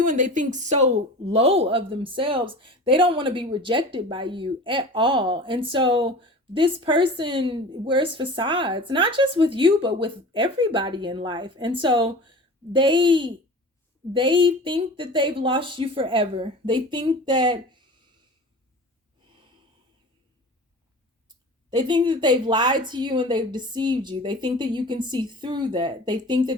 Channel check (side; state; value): both; normal; correlation 0.37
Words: and they think so low of themselves. They don't want to be rejected by you at all. And so this person wears facades, not just with you, but with everybody in life. And so they think that they've lost you forever. They think that they've lied to you and they've deceived you. They think that you can see through that. They think